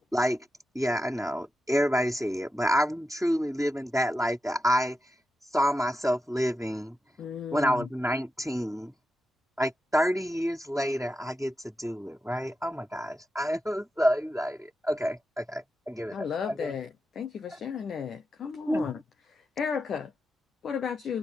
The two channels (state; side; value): normal; both; correlation 0.89